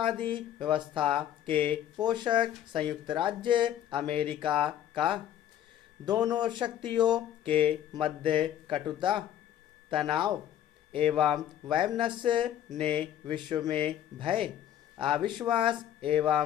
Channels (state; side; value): quieter; right; 10.9 dB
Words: व्यवस्था के पोषक संयुक्त राज्य अमेरिका का। दोनों शक्तियों के मध्य कटुता, तनाव एवं वैमनस्य ने विश्व में भय, अविश्वास